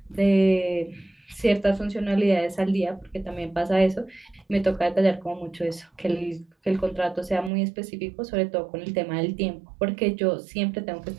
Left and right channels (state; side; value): drops out; left; at 7.5 s